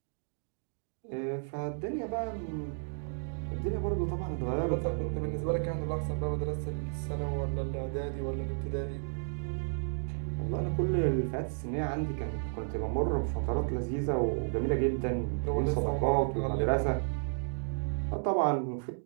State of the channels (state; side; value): silent; left; digital silence